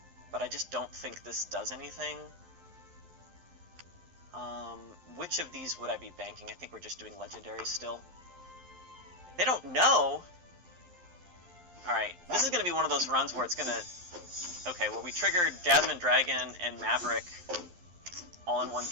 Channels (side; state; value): left; late; 11 ms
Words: But I just don't think this does anything. Which of these would I be banking? I think we're just doing Legendary still. They don't know! Alright, this is going to be one of those runs where it's going to... Okay, well, we triggered Jasmine Dragon and Maverick all in one